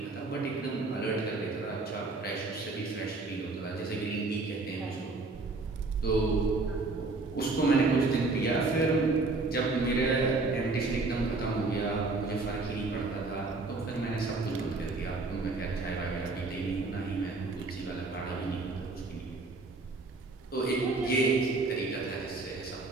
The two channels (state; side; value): quieter; left; 3.5 dB